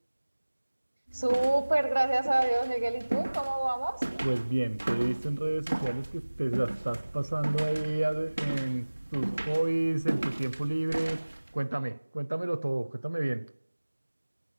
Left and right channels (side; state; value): both; inverted; correlation -1.00